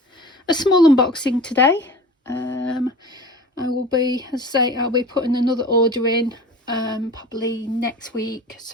small unboxing today. I will be, as I say, I'll be putting another order in probably next week.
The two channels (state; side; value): normal; both; correlation 0.38